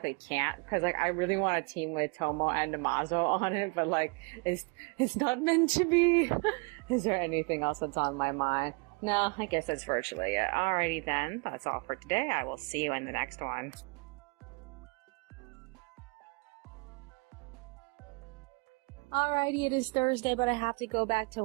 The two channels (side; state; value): left; quieter; 31.7 dB